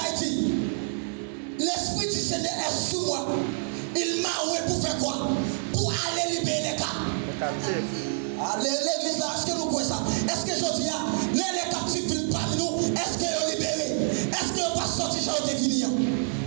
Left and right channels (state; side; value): silent; left; digital silence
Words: dit, l'Esprit du Seigneur est sous moi. Il m'a envoyé pour faire quoi? Pour aller libérer les captifs. L'église là, est-ce que nous croyons ça? Est-ce que je dis, les captifs viennent parmi nous? Est-ce qu'ils sont libérés? Est-ce qu'ils ne sont pas sortis chez eux de venir?